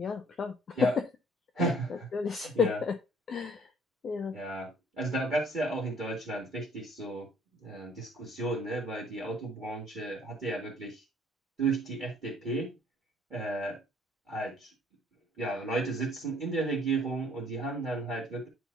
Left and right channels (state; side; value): normal; both; correlation 0.58